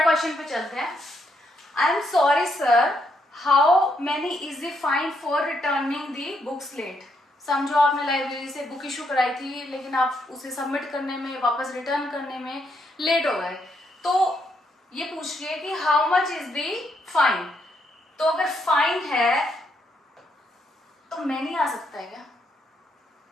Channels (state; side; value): normal; both; correlation 0.76